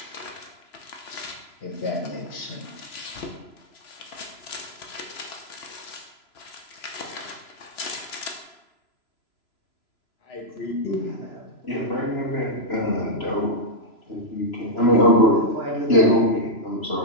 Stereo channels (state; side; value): late; right; 3.0 ms